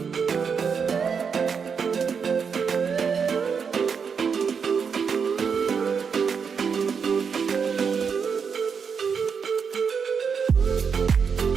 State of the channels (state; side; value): quieter; left; 6.2 dB